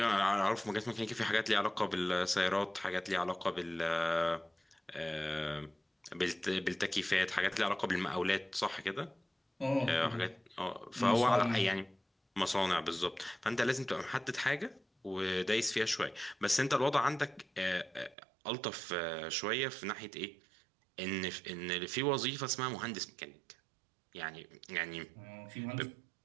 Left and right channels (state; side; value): drops out; left; at 18.2 s